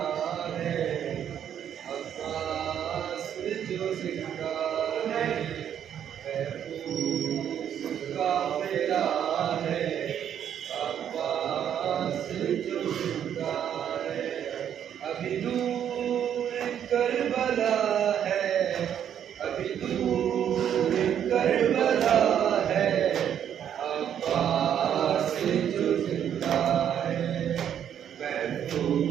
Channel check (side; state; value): left; quieter; 9.4 dB